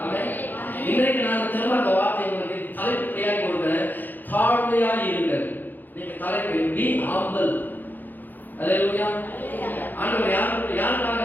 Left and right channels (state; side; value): late; right; 0.087 ms